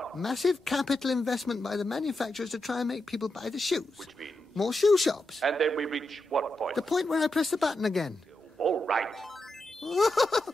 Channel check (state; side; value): normal; both; correlation 0.86